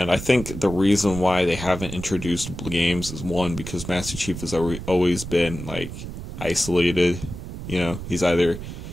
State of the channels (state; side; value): noise; right; rumble, 9 dB below the sound